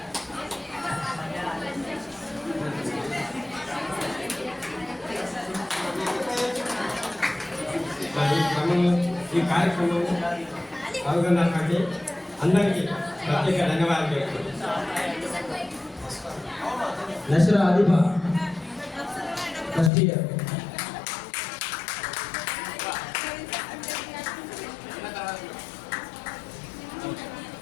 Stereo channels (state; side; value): drops out; right; at 19.9 s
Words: ఈ కార్యక్రమం పాల్గొన్నటువంటి అందరికీ ప్రత్యేక ధన్యవాదాలు తెలుపుతున్నాను. Nashra Adiba first year.